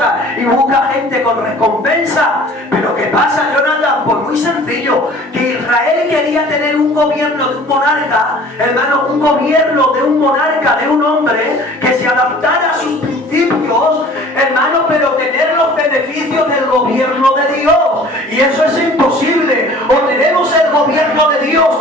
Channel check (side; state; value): both; normal; correlation 0.48